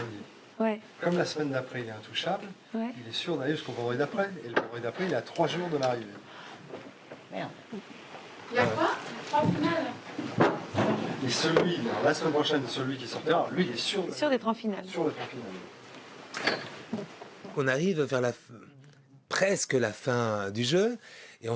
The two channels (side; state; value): both; identical; correlation 1.00